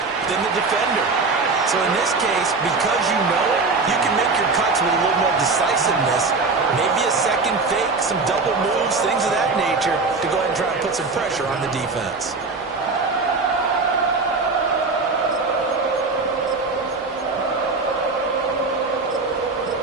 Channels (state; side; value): quieter; left; 4.0 dB